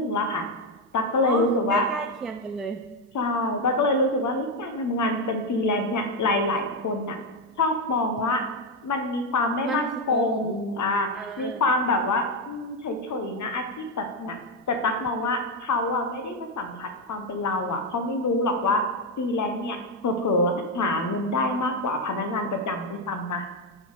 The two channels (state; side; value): normal; both; correlation 0.06